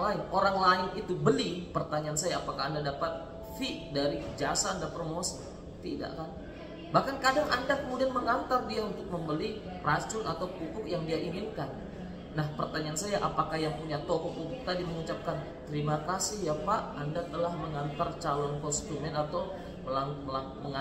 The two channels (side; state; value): both; identical; correlation 1.00